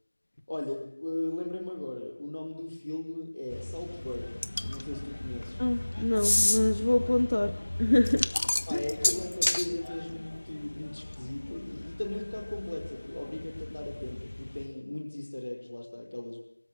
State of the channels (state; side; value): inverted; both; correlation -1.00